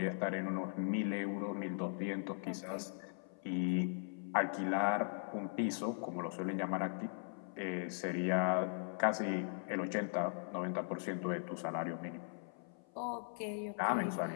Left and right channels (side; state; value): right; silent; 52 dB below the other